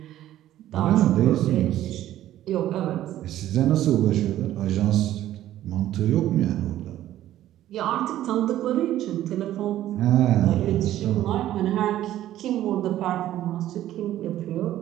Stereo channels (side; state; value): left; quieter; 13.1 dB